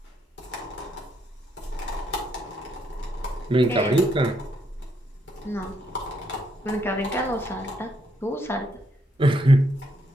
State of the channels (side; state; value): both; normal; correlation 0.75